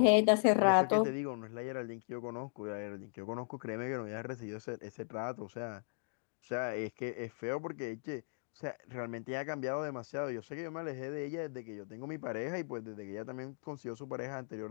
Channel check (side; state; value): right; silent; digital silence